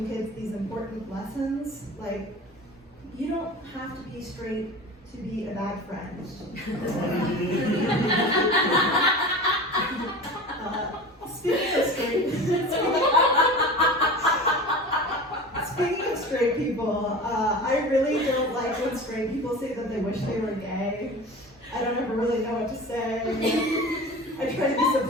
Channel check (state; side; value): normal; both; correlation 0.34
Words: kids these important lessons, like you don't have to be straight to be a bad friend. Speaking of straight people, I really don't like when straight people say that they wish they were gay. I don't ever really know what to say. I try to be